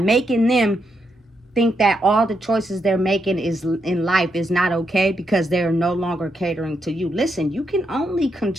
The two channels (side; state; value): both; normal; correlation 0.81